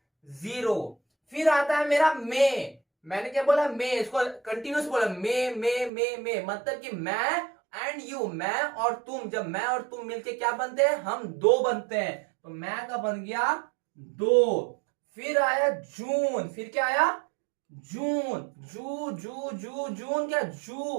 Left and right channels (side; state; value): left; drops out; at 5.9 s